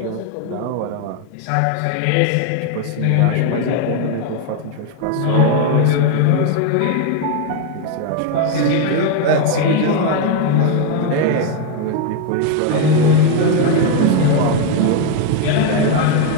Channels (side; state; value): both; different; correlation 0.01